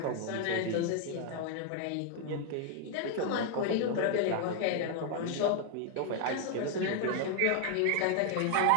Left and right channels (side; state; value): both; different; correlation 0.00